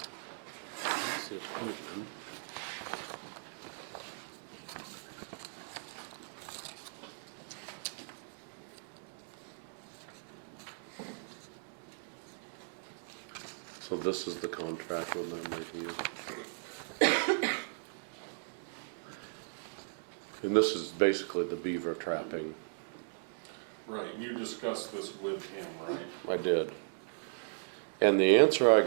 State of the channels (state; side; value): silent; left; digital silence